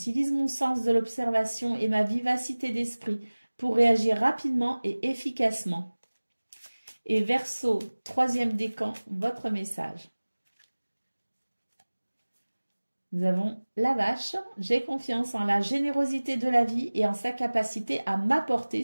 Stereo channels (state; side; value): inverted; both; correlation -1.00